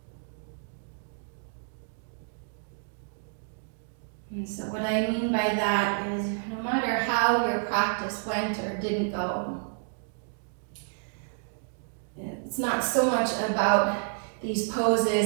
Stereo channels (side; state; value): left; silent; digital silence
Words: And so what I mean by that is no matter how your practice went or didn't go, it's not so much about these